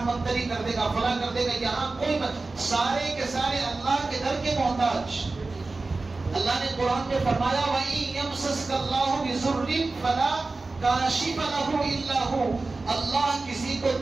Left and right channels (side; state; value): left; quieter; 3.5 dB